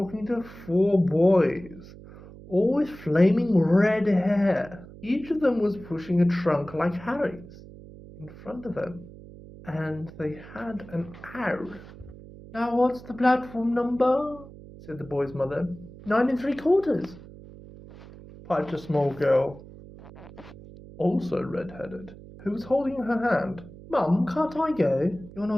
to 4 boys, all with flaming red hair. Each of them was pushing a trunk like Harry's in front of them, and they had an owl. Now what's the platform number? Said the boy's mother. 9 3/4, piped a small girl, also red-headed, who was holding her hand. Mum, can't I go? You're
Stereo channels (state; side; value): noise; right; hum, 18 dB below the sound